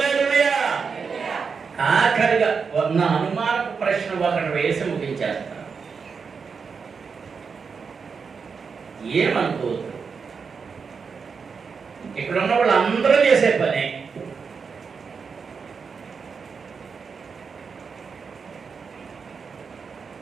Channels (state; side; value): quieter; left; 5.6 dB